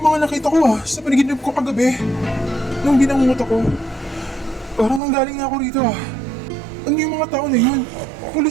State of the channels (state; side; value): drops out; left; at 5.0 s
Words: mga nakita ko sa panaginip ko kagabi. Nung binangungot ako. Parang nanggaling na ako rito Ano yung mga tao na yun?